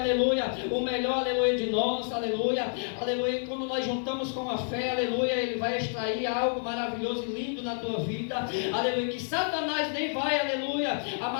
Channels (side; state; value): right; silent; digital silence